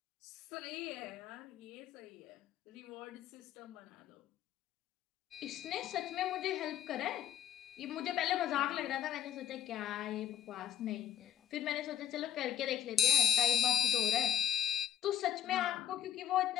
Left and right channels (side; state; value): right; quieter; 9.6 dB